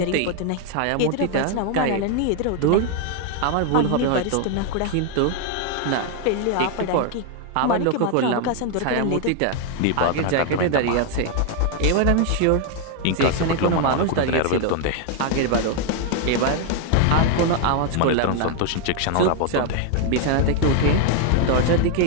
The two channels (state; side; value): different; both; correlation 0.01